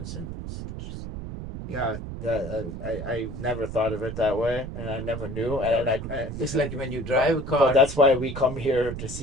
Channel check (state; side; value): noise; right; rumble, 8 dB below the sound